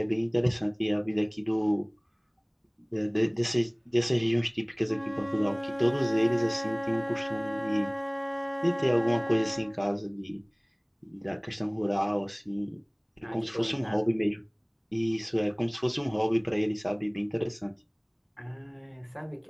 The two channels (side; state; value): both; identical; correlation 1.00